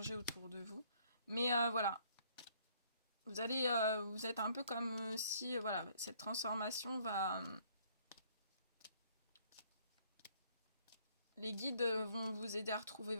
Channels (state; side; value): inverted; both; correlation -0.63